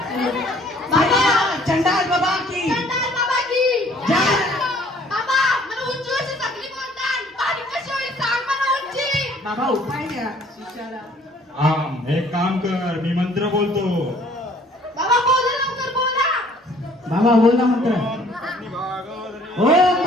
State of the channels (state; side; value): normal; both; correlation 0.58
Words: बाबा चंडाल बाबा की जय. बाबा उपाय द्या शिष्याला. एक काम कर, मी मंत्र बोलतो. बाबा बोल ना मंत्र. ओम